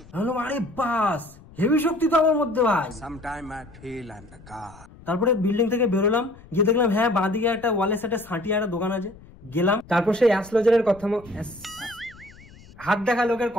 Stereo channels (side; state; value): left; noise; rumble, 22 dB below the sound